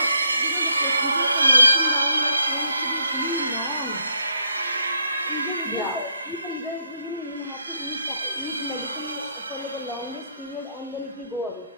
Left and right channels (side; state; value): both; inverted; correlation -0.71